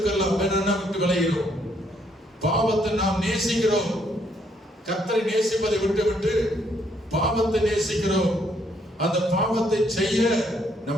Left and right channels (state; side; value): normal; both; correlation 0.71